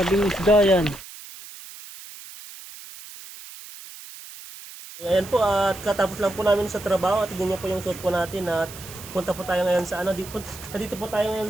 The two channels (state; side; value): noise; right; hiss, 15 dB below the sound